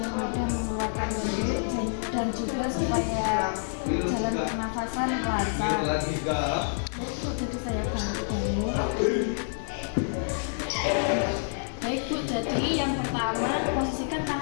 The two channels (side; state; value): right; silent; digital silence